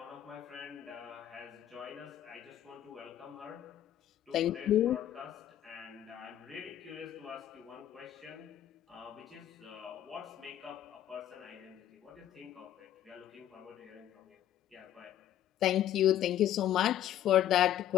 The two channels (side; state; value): right; quieter; 11.6 dB